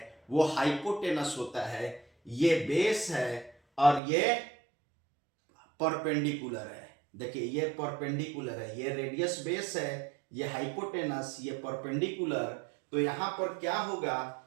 वो हाइपोटेनस होता है, ये बेस है और ये परपेंडिकुलर है। देखिए ये परपेंडिकुलर है, ये रेडियस बेस है, ये हाइपोटेनस, ये परपेंडिकुलर। तो यहां पर क्या होगा,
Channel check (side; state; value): left; drops out; at 4.0 s